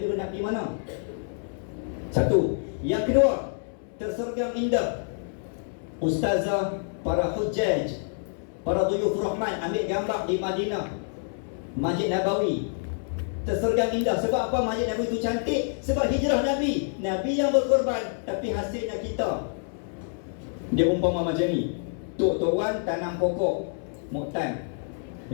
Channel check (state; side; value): silent; right; 60 dB below the other